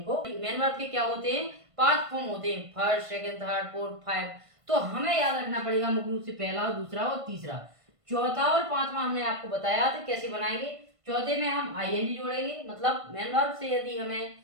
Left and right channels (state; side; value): late; left; 1.5 ms